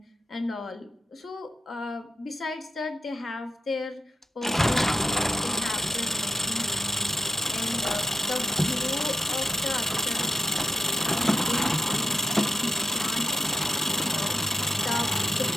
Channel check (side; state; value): both; normal; correlation 0.77